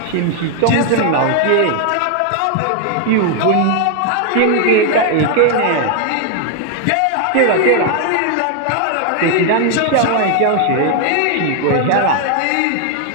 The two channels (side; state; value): both; different; correlation 0.00